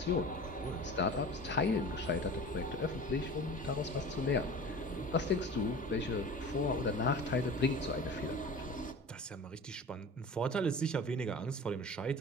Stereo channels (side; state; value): both; normal; correlation 0.37